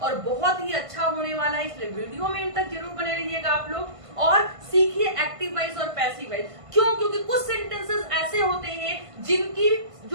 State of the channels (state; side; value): late; left; 1.5 ms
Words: और बहुत ही अच्छा होने वाला है, इसलिए वीडियो में इन तक जरूर बने रहिएगा आप लोग और सीखिए एक्टिव वाइज और पैसिव वाइज। क्यों? क्योंकि कुछ सेंटेंसेस ऐसे होते हैं जिनकी